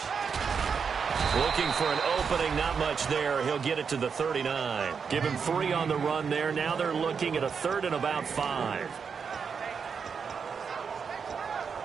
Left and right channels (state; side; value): quieter; left; 6.1 dB